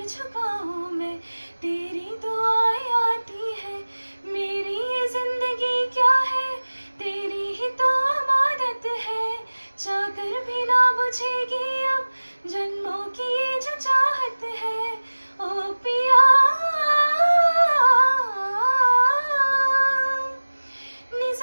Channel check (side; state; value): both; inverted; correlation -1.00